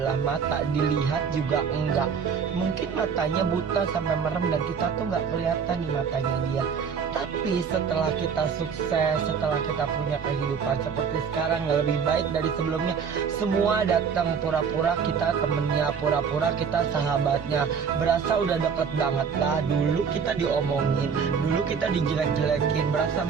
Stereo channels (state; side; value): quieter; left; 6.4 dB